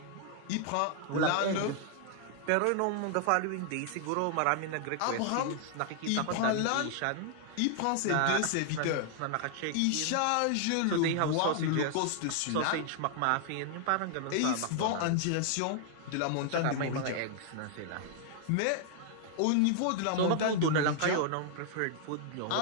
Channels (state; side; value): different; both; correlation 0.00